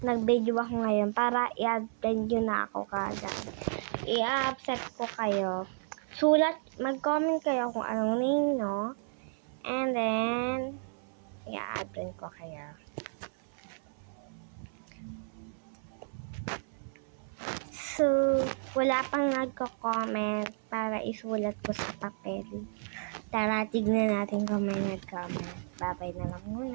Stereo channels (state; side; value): silent; left; 56 dB below the other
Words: nag-video ako ngayon para i-attend nyo na ako kagad. I-accept ko kayo. Mag-comment kayo kung anong name, no? And then, i-attend ko kayo. So, wala pang nagko-comment para isulat ko sa papel. Tara, tignan natin kung may nag-comment. Bye-bye na lang